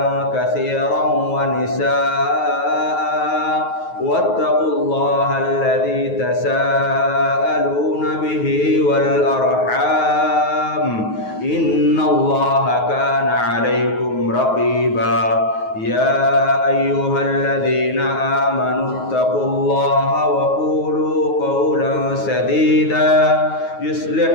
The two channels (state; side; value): late; right; 9.3 ms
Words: كثيرا ونساء واتقوا الله الذي تساءلون به والأرحام إن الله كان عليكم رقيبا يا أيها الذين آمنوا اتقوا الله وقولوا قولا سديدا يصلح